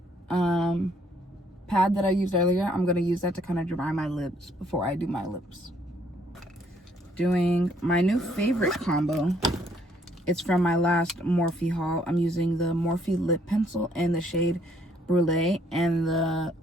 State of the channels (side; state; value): both; normal; correlation 0.66